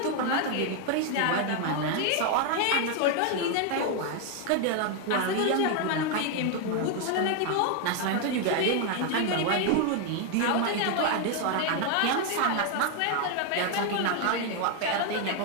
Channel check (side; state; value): both; different; correlation 0.01